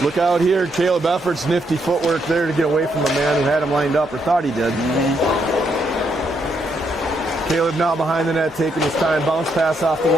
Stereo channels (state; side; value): normal; both; correlation 0.76